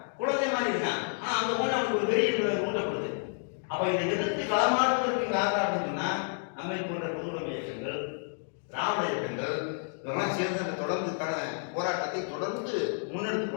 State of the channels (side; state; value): right; silent; 58 dB below the other